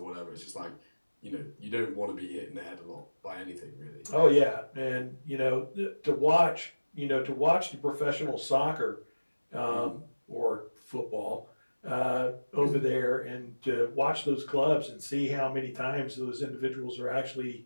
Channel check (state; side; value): inverted; both; correlation -1.00